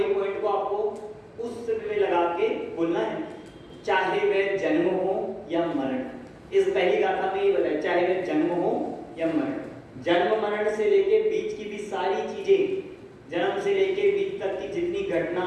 पॉइंट को आपको उस में लगा के बोलना है, चाहे वह जन्म हो या मरण। इस पहली गाथा में ये बताया, चाहे वह जन्म हो या मरण। जन्म मरण से लेके बीच की भी सारी चीजें, जन्म से लेके बीच तक की जितनी घटना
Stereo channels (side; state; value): both; identical; correlation 1.00